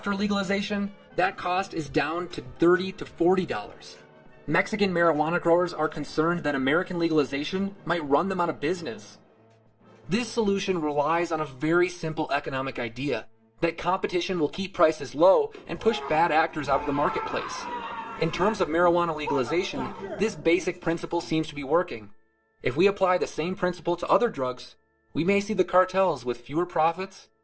legalization, that cost is down to $30 to $40. Mexican marijuana growers are concerned that American legalization might run them out of business. This solution relies on a very simple economic idea, that competition will keep prices low and push bad actors out of the marketplace. In terms of marijuana legalization, this basic principle seems to be working. If we apply the same principle to other drugs, we may see the cartels with fewer profits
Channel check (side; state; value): both; identical; correlation 1.00